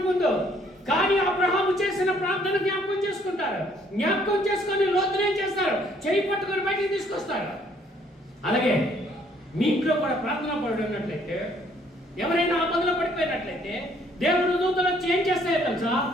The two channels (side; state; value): both; normal; correlation 0.64